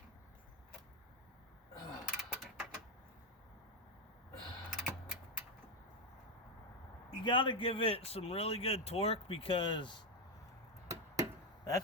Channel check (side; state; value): both; normal; correlation 0.06